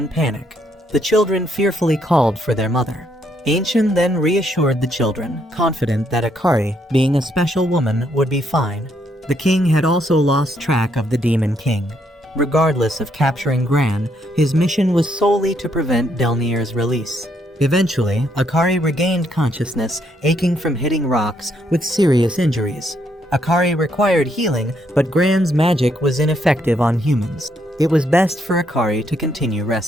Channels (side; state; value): both; normal; correlation 0.73